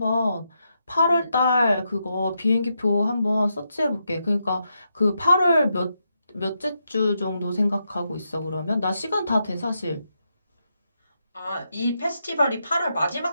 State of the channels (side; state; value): both; inverted; correlation -0.83